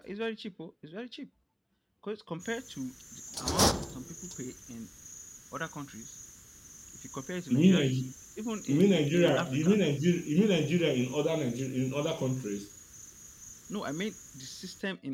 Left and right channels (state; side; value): identical; both; correlation 1.00